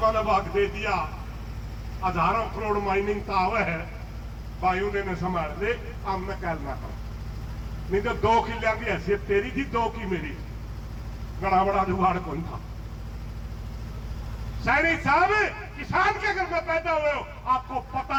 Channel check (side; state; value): both; identical; correlation 1.00